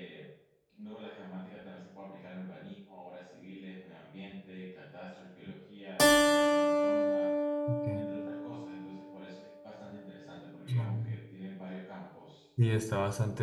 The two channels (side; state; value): both; identical; correlation 1.00